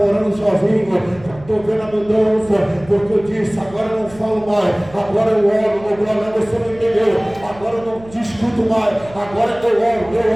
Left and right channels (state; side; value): noise; right; hum, 21 dB below the sound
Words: sozinho, estou vendo a mudança, porque eu disse, agora eu não falo mais, agora eu oro, ô Glória, você não entendeu, agora eu não discuto mais, agora eu oro,